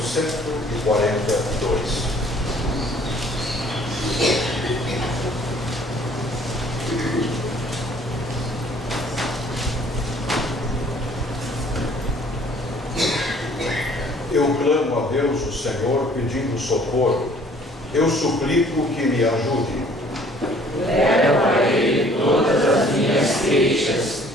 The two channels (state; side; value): normal; both; correlation 0.56